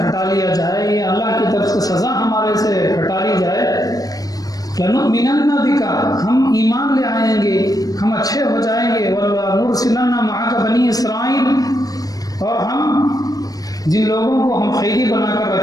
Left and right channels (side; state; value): right; late; 0.18 ms